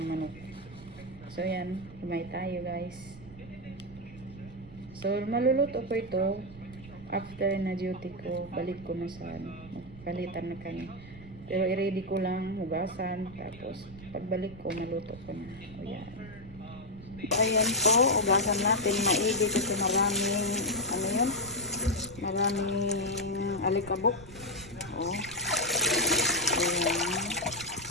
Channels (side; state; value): right; noise; rumble, 17 dB below the sound